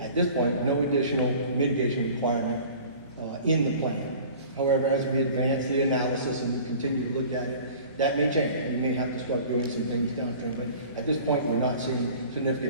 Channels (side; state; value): both; inverted; correlation -0.44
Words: at this point, no additional mitigation requirement in the plan. However, as we advance the analysis and we continue to look at it, that may change. We may have to start doing some things downstream, but at this point, we're not seeing